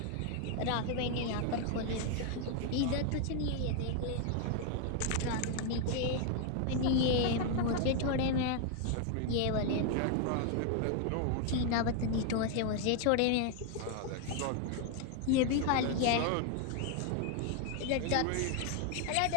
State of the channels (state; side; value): different; both; correlation 0.00